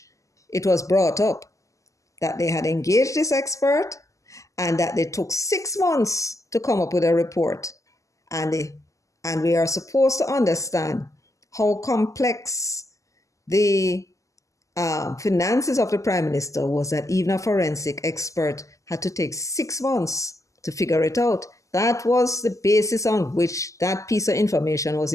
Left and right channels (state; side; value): late; right; 0.16 ms